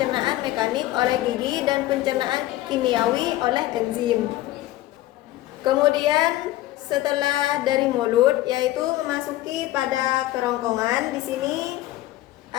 mekanik oleh gigi dan pencernaan kimiawi oleh enzim. Kemudian setelah dari mulut, yaitu memasuki pada kerongkongan. Di sini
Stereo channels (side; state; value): right; quieter; 15.9 dB